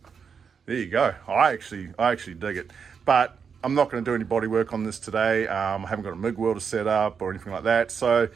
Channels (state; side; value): quieter; left; 6.4 dB